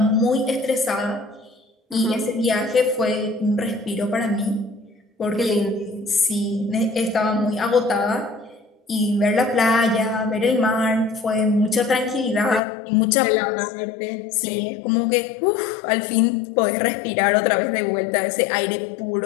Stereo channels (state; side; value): drops out; right; at 12.6 s